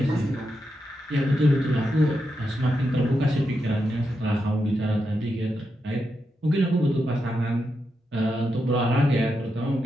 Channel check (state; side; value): normal; both; correlation 0.85